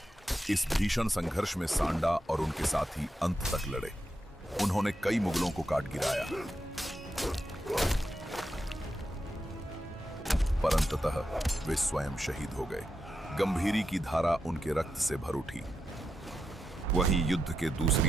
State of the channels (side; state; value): both; normal; correlation 0.87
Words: इस भीषण संघर्ष में सांडा और उनके साथी अंत तक लड़े। उन्होंने कई मुगलों को काट गिराया, पर अंततः वे स्वयं शहीद हो गए। गंभीरी की धारा उनके रक्त से भर उठी। वहीं युद्ध के